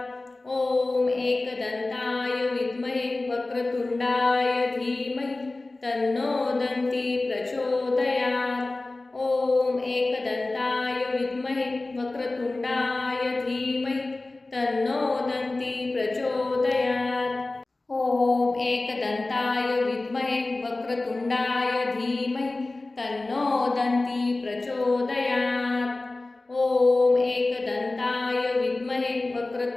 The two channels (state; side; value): quieter; right; 3.1 dB